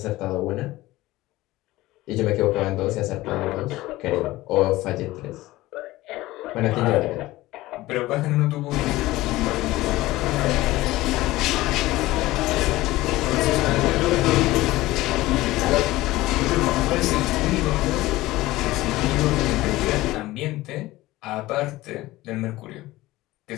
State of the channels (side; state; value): right; quieter; 17.9 dB